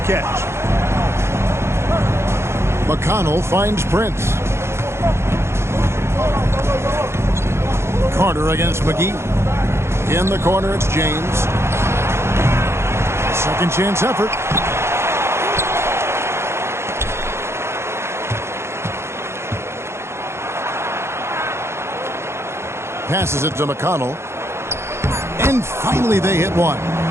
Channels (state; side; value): late; left; 0.13 ms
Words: McConnell finds Prince. Carter against McGee. In the corner, it's James. Second chance effort. Passes it to McConnell. And finally they hit one.